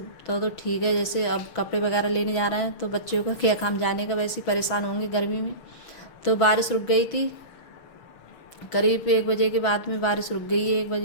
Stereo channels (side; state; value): right; late; 6.1 ms